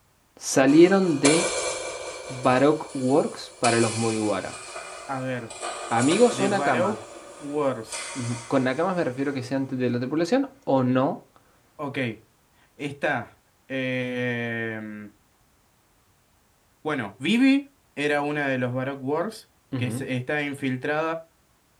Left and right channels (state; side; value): identical; both; correlation 1.00